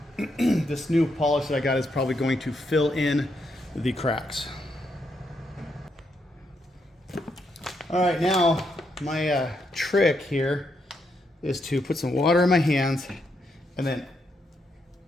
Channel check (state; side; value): normal; both; correlation 0.79